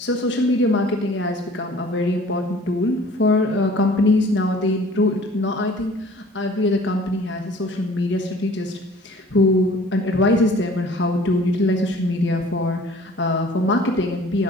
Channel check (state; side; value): normal; both; correlation 0.50